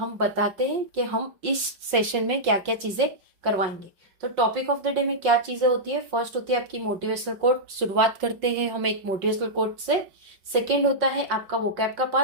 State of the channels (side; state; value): left; late; 5.5 ms